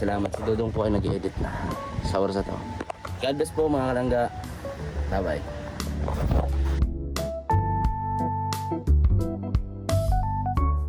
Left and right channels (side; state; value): both; identical; correlation 1.00